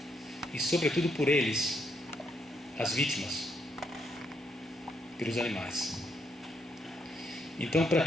e sobretudo por eles, as vítimas, pelos animais. Então, para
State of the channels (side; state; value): both; normal; correlation 0.76